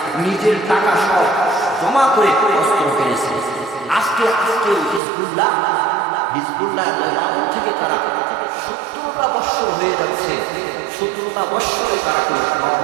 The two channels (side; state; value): left; drops out; at 5.0 s